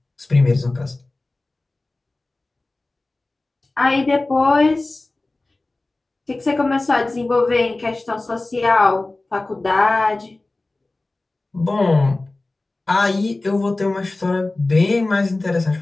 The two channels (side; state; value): right; quieter; 3.0 dB